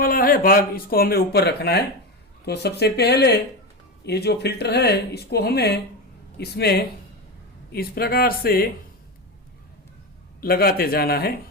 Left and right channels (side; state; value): both; normal; correlation 0.18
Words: है भाग इसको हमें ऊपर रखना है। तो सबसे पहले ये जो फिल्टर है इसको हमें इसमें इस प्रकार से लगाते जाना है।